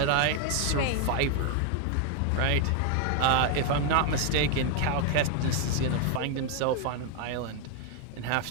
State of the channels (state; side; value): different; both; correlation 0.00